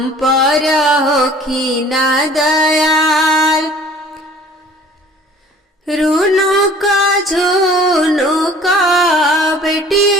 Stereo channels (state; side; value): normal; both; correlation 0.50